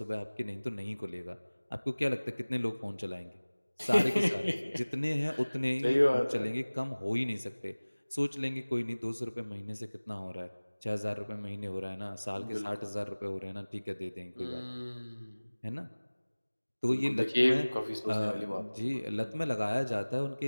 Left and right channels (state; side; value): inverted; both; correlation -1.00